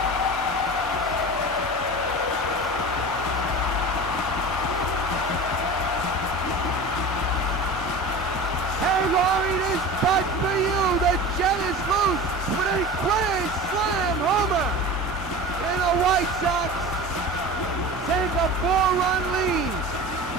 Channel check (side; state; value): both; normal; correlation 0.34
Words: LOWRIE, this putt for you. The Jet is loose with a grand slam homer. And the White Sox take a 4-run lead.